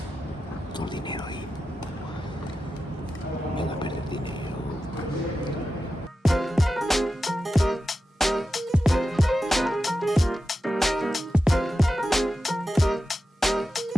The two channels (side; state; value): both; normal; correlation 0.91